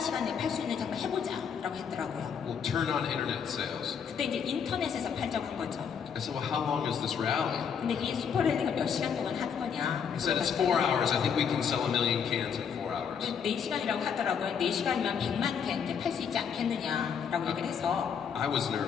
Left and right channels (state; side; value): quieter; right; 7.1 dB